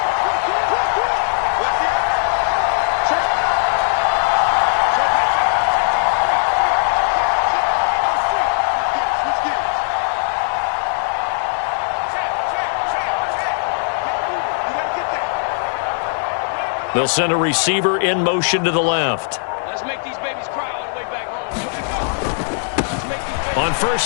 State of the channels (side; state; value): right; silent; digital silence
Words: They'll send a receiver in motion to the left. Let's make these babies cry all the way back home. On